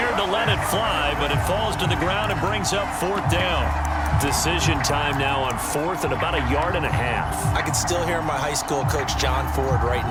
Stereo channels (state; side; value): identical; both; correlation 1.00